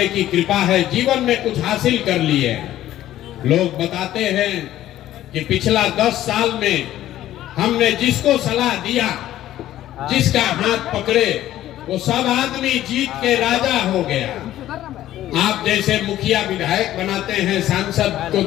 की कृपा है, जीवन में कुछ हासिल कर लिए। लोग बताते हैं कि पिछला 10 साल में हमने जिसको सलाह दिया, जिसका हाथ पकड़े, वो सब आदमी जीत के राजा हो गया। आप जैसे मुखिया विधायक बनाते हैं, सांसद को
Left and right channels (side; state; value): right; quieter; 13.4 dB